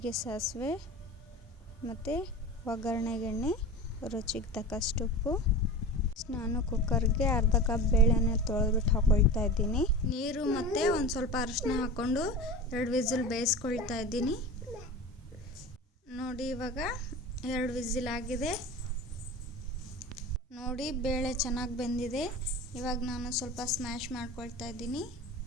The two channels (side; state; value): both; normal; correlation 0.32